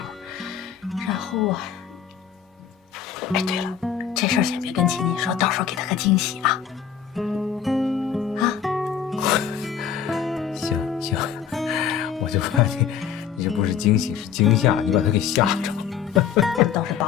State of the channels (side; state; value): right; quieter; 8.2 dB